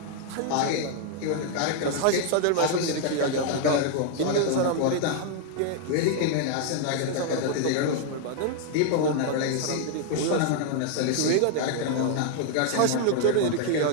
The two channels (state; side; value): different; both; correlation 0.00